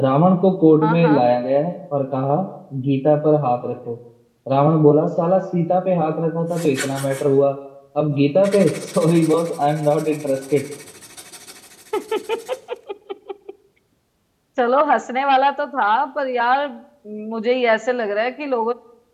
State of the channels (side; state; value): both; identical; correlation 1.00